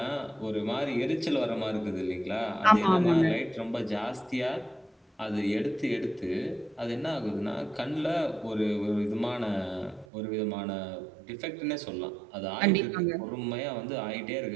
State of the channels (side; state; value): left; drops out; at 10.1 s